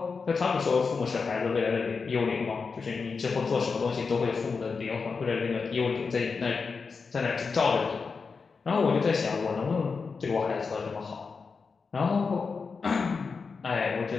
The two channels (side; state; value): right; quieter; 4.9 dB